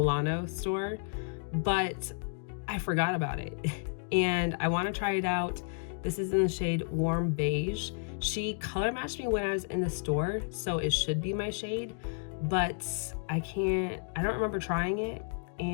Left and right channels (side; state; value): right; silent; digital silence